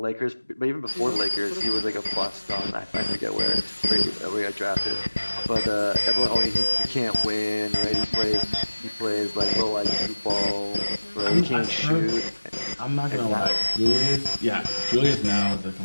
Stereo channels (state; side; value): inverted; both; correlation -1.00